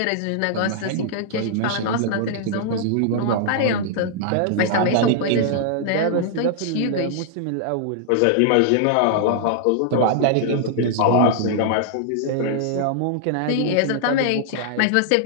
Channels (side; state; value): both; different; correlation -0.01